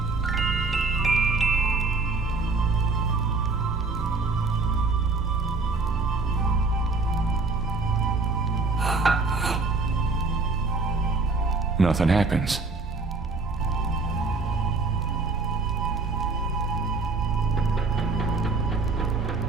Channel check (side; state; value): left; quieter; 3.8 dB